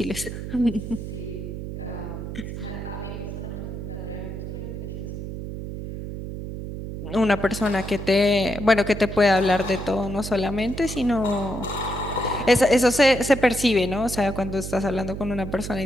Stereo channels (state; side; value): noise; right; hum, 7 dB below the sound